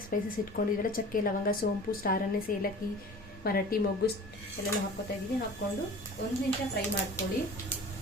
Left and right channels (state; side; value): normal; both; correlation 0.41